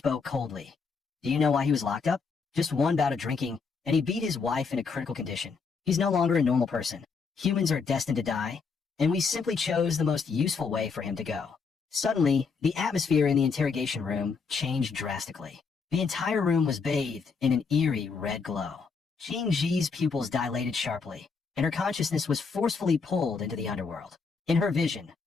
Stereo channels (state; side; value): quieter; right; 5.1 dB